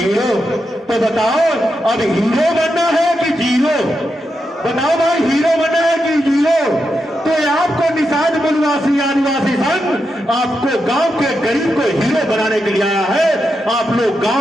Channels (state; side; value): normal; both; correlation 0.86